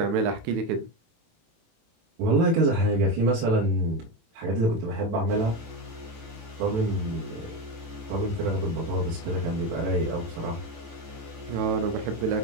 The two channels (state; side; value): late; left; 18 ms